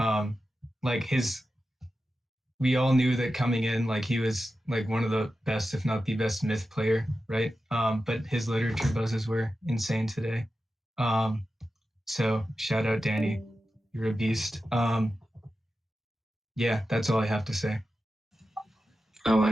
Like we all knew that coming in, like he was like one of the best, if not the best myth player, right? But his literature buzzes were insane today. So shout out Danny, you're a beast. Yeah, that's all I have to say. I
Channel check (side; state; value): both; normal; correlation 0.92